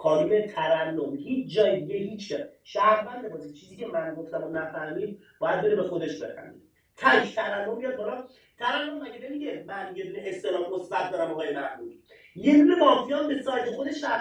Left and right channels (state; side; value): identical; both; correlation 1.00